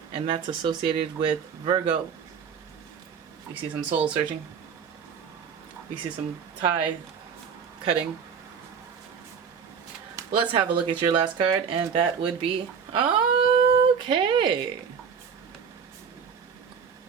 and that's associated with Virgo. You see some soul searching. You see some tie cutting. Let's have a look at your last card, and that would be, okay,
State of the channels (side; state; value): left; quieter; 6.7 dB